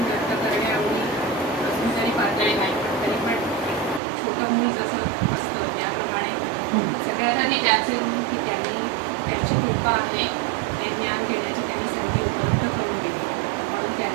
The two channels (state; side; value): drops out; left; at 4.0 s